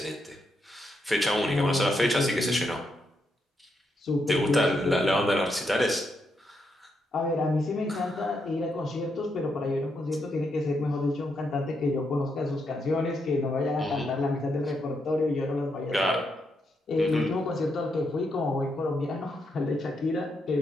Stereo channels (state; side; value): normal; both; correlation 0.81